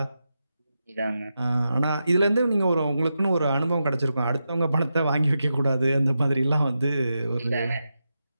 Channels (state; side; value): inverted; both; correlation -0.88